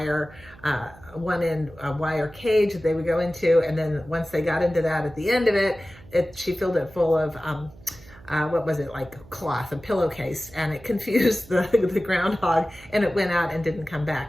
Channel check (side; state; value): right; noise; hum, 22 dB below the sound